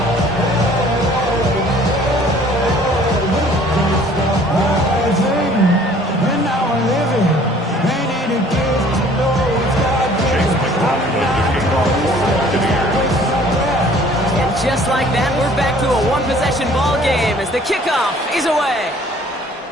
Just like that, we're back to a one-possession ball game as the kickoff is away.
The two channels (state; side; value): normal; both; correlation 0.54